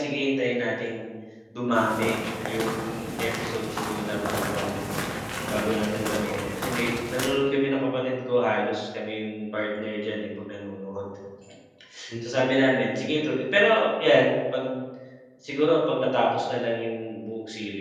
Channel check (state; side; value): identical; both; correlation 1.00